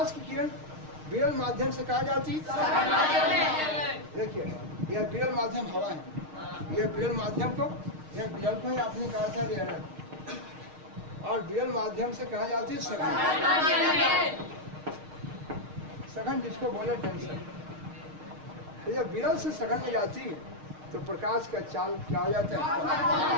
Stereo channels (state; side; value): late; left; 6.5 ms